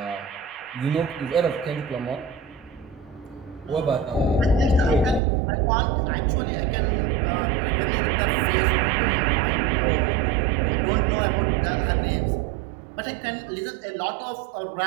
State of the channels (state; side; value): drops out; left; at 5.2 s